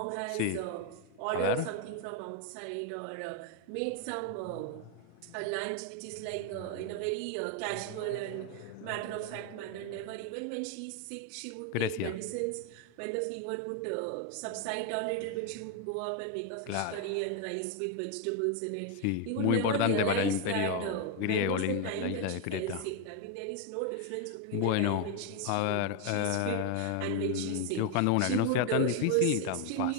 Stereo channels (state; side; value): different; both; correlation 0.01